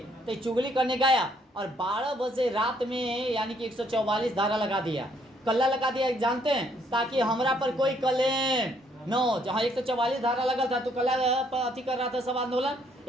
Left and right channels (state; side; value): normal; both; correlation 0.68